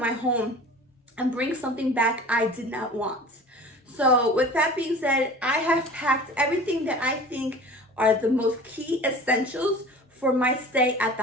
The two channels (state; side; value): normal; both; correlation 0.40